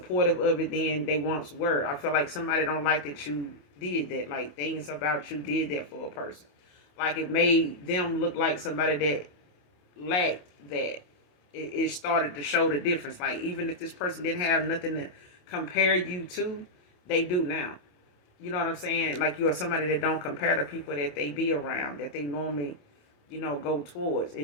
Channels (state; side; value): late; right; 28 ms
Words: of it than they once were. I feel like somebody don't like that you did that, like things about you did that for a person. Like it made them look like somebody that lacked that. It started to show the difference. Like even if this person didn't have nothing to compare you to, they do now. You know what I'm saying? Like you are somebody that don't compare to people that they be around, that they normally, you know, go towards.